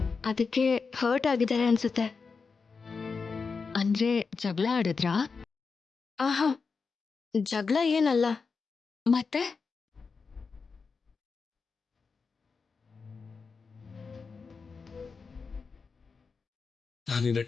ಅದಕ್ಕೆ ಹರ್ಟ್ ಆಗಿದ್ದಾರೆ ಅನ್ಸುತ್ತೆ. ಅಂದ್ರೆ ಜಗಳ ಆಡಿದ್ರಾ? ಆಹಾ, ಜಗಳ ಏನಲ್ಲ. ಮತ್ತೆ ನಾನಿನ್ನ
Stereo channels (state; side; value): quieter; right; 4.9 dB